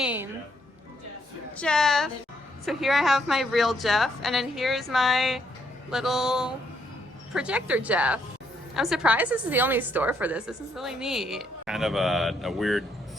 Jeff. So here I have my real Jeff, and then here's my little projector Jeff. I'm surprised this is the only store for this. This is really neat. Kind of a weird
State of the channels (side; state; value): both; normal; correlation 0.73